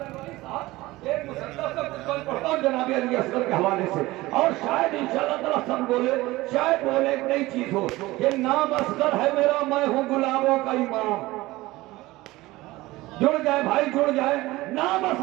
جناب علی اصغر کے حوالے سے، اور شاید انشاءاللہ تعالیٰ سب بولے، شاید بولے ایک نئی چیز ہو، یہ نام اصغر ہے میرا، میں ہوں گلابوں کا امام، جڑ جائے بھائی جڑ جائے، نام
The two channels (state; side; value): quieter; left; 19.1 dB